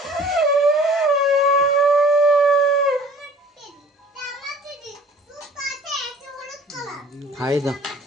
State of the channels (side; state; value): both; normal; correlation 0.49